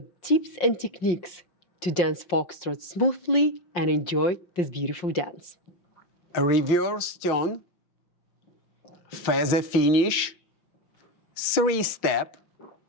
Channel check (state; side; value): late; right; 6.4 ms